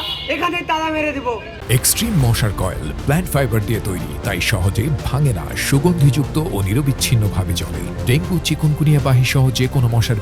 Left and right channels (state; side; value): identical; both; correlation 1.00